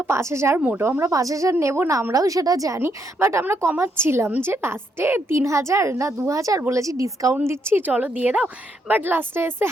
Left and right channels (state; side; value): normal; both; correlation 0.76